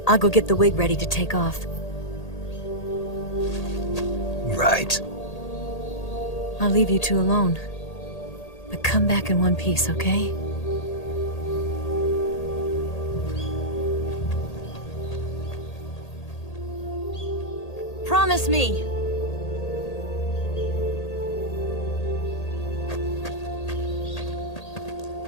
I'll go get the wig ready to take off. Right. I'll leave you two alone. But come back in one piece, okay? Promise me!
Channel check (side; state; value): right; late; 1.8 ms